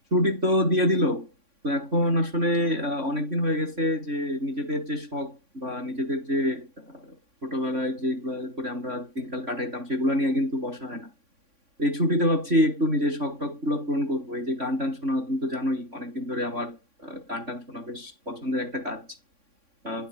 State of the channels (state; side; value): late; left; 3.6 ms